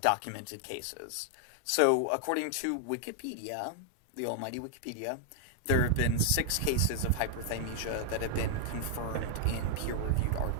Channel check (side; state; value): both; different; correlation 0.00